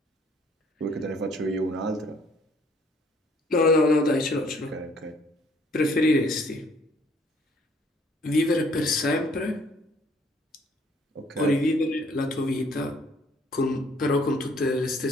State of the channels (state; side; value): normal; both; correlation 0.61